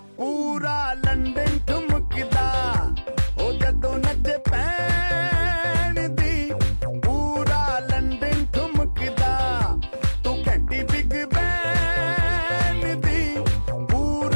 पूरा लंदन ठुमकदा ओ जदों नचे पैन दी, पूरा लंदन ठुमकदा। तू कैंटी बिग बैन दी,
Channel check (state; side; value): inverted; both; correlation -1.00